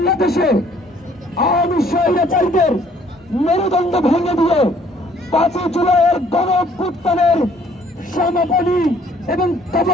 আওয়ামী স্বৈরাচারীদের মেরুদণ্ড ভেঙে দিয়ে 5 জুলাইয়ের গণঅভ্যুত্থানের সমাপনী এবং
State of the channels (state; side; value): normal; both; correlation 0.60